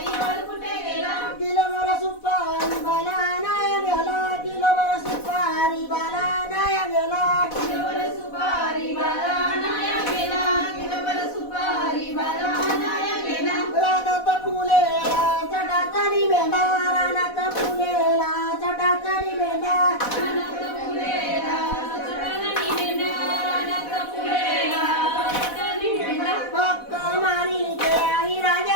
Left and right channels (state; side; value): late; right; 4.1 ms